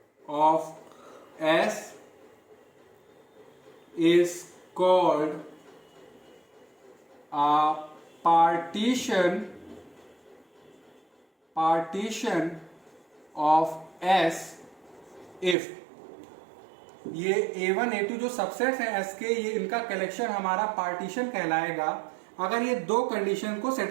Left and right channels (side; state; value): left; drops out; at 15.6 s